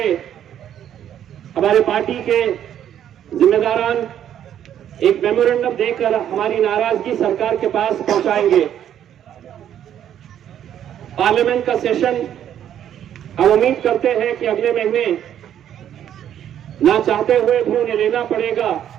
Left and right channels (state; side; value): quieter; left; 10.2 dB